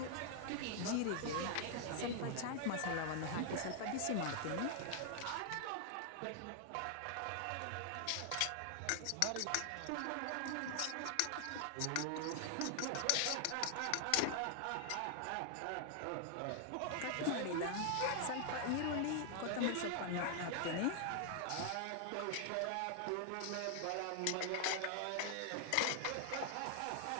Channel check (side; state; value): both; different; correlation 0.00